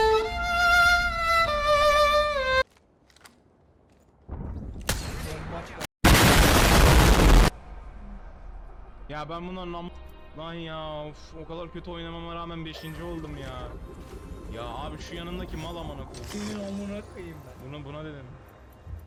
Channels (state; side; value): identical; both; correlation 1.00